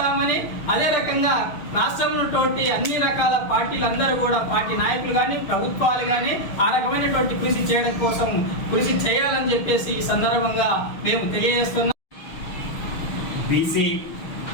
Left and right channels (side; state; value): right; late; 6.4 ms